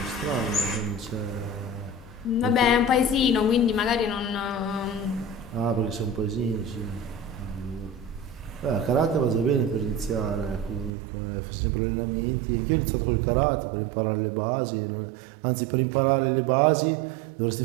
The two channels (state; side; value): drops out; left; at 10.9 s